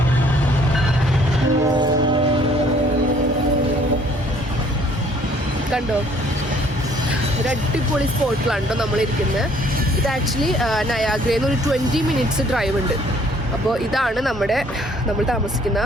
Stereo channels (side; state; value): both; normal; correlation 0.60